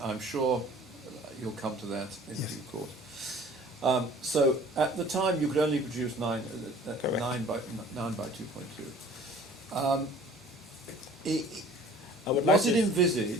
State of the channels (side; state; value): both; normal; correlation 0.49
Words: I'm sure you'll come to that in Yes. due course. So at the time you could only produce 9 by 2.2. I would Was like it to-